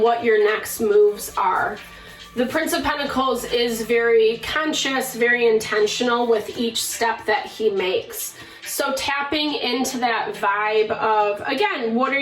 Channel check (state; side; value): identical; both; correlation 1.00